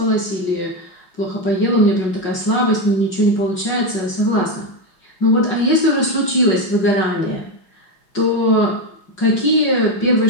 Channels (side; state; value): right; late; 5.5 ms